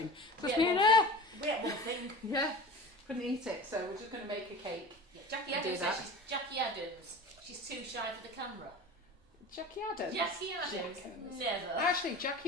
We had one thing. Yeah, couldn't eat it. So we're just going to make a cake. Yeah, Jackie Adams. She's too shy for the camera. Jackie Adams? Jackie Adams? Never. Actually,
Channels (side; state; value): both; normal; correlation 0.35